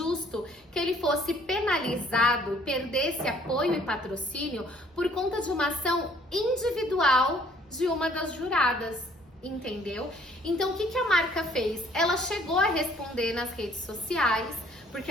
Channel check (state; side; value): normal; both; correlation 0.60